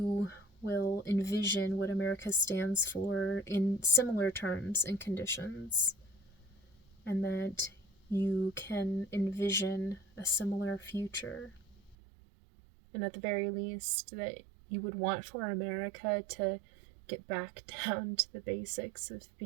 will envision what America stands for in similar terms and conditions, and that you can envision a similar future. And at the very least, that you would want for America to get back down to the basics of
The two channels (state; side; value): drops out; left; at 12.0 s